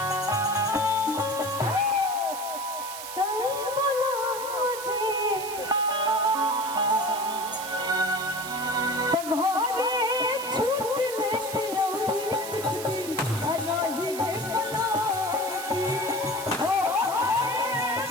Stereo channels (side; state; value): right; noise; hiss, 9 dB below the sound